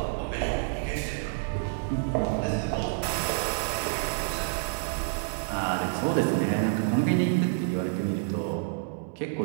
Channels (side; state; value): left; silent; 59 dB below the other